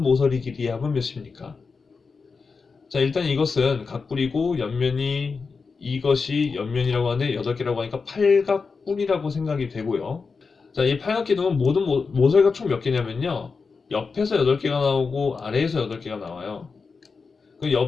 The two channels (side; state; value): right; quieter; 4.8 dB